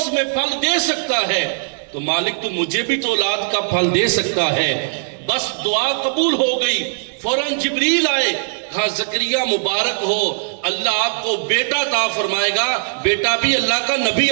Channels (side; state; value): left; silent; 66 dB below the other